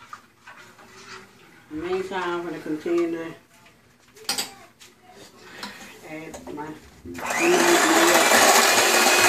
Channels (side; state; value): both; identical; correlation 1.00